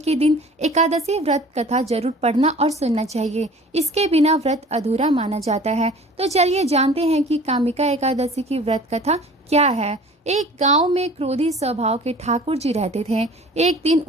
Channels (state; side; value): normal; both; correlation 0.46